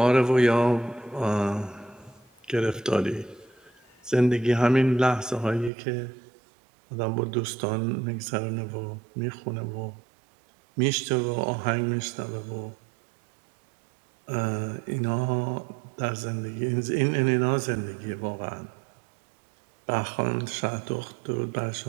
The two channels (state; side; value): drops out; left; at 5.7 s